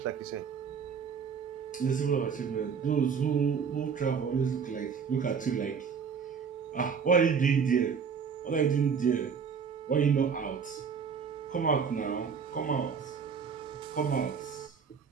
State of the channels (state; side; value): quieter; left; 6.3 dB